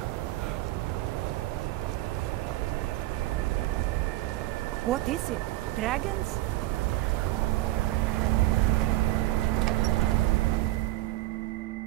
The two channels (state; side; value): quieter; left; 17.5 dB